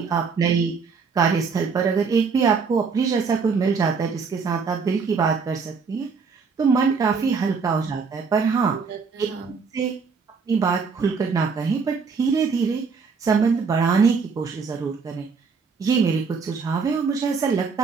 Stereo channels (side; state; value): left; quieter; 5.2 dB